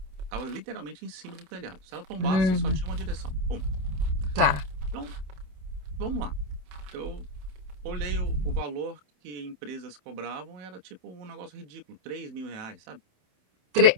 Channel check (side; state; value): left; late; 27 ms